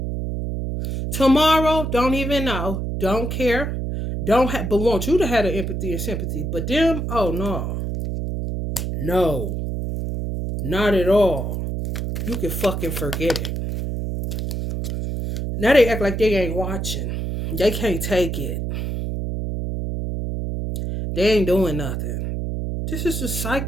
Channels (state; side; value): noise; right; hum, 3 dB below the sound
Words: Tomorrow, don't even know, don't care, but want you to have the empathy and sympathy. But them, oh no. No. Not at all. You can fucking forget it. Now they act like they ain't watching. They can't take it. They ain't doing nothing. This is just